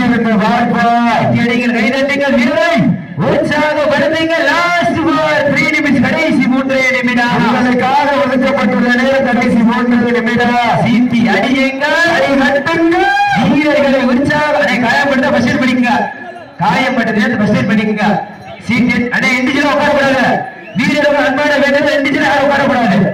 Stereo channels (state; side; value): identical; both; correlation 1.00